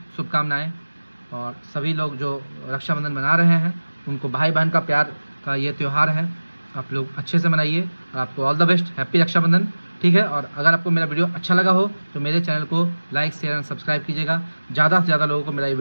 शुभकामनाएं, और सभी लोग जो रक्षाबंधन मना रहे हैं उनको भाई बहन का प्यार का ये त्यौहार है, आप लोग अच्छे से मनाइए, और आपको all the best, happy Rakshabandhan, ठीक है। और अगर आपको मेरा वीडियो अच्छा लगा हो तो मेरे चैनल को लाइक, शेयर एंड सब्सक्राइब कीजिएगा, ज़्यादा से ज़्यादा लोगों को मेरा ये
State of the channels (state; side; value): inverted; both; correlation -1.00